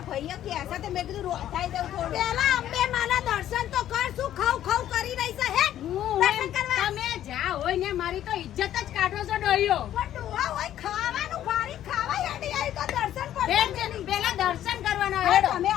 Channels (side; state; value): right; quieter; 11.8 dB